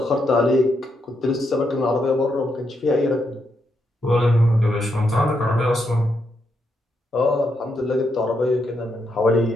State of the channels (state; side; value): normal; both; correlation 0.80